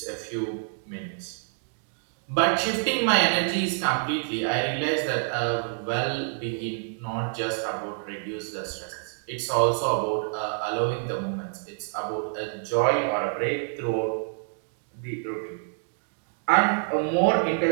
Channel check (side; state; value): left; silent; digital silence